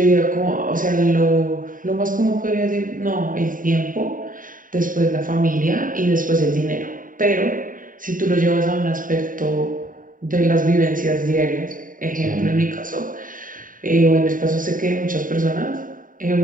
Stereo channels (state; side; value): late; left; 0.39 ms